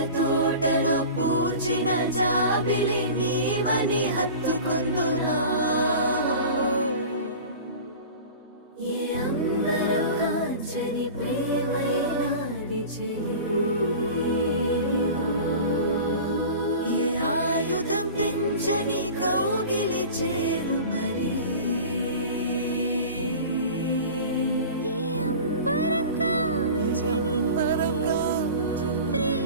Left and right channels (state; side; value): inverted; both; correlation -0.37